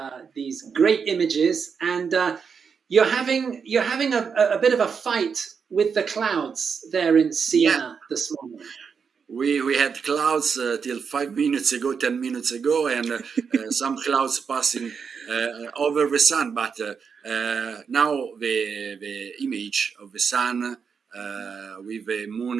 these great images. And you're having a bit of a fight with the clouds there in Yeah, Siena this morning. we had clouds till 5 minutes ago, 10 minutes ago, and some clouds passing over the sun. But now the image of the sun with the moon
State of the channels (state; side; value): quieter; left; 6.1 dB